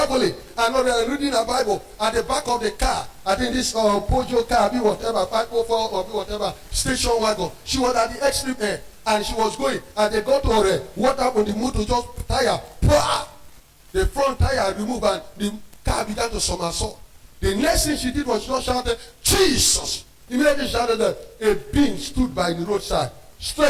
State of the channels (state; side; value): identical; both; correlation 1.00